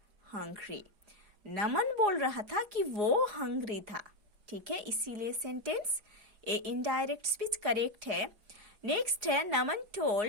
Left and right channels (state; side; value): late; left; 4.8 ms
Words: hungry. Naman बोल रहा था कि वो हंग्री था. ठीक है, इसीलिए sentence A indirect speech correct है. नेक्स्ट है, Naman